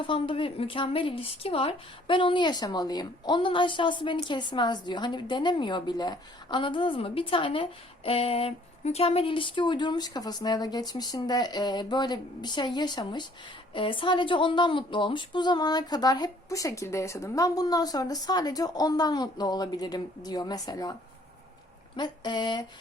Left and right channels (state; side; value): normal; both; correlation 0.59